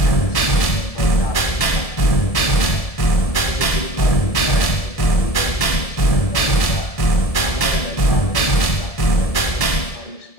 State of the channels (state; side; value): late; right; 1.7 ms